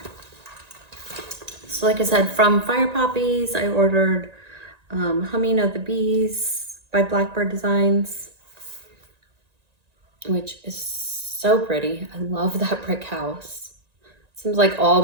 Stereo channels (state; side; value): late; left; 1.9 ms